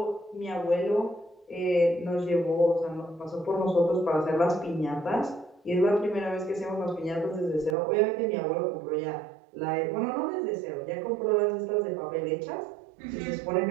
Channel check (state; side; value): drops out; left; at 7.8 s